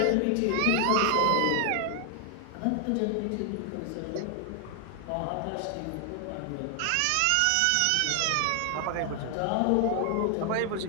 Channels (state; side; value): different; both; correlation 0.00